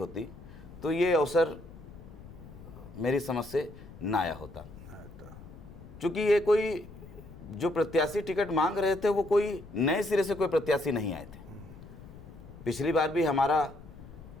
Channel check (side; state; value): left; noise; rumble, 17 dB below the sound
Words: तो ये अवसर मेरी समझ से ना आया होता, क्योंकि ये कोई जो प्रत्याशी टिकट मांग रहे थे वो कोई नए सिरे से कोई प्रत्याशी नहीं आए थे। पिछली बार भी हमारा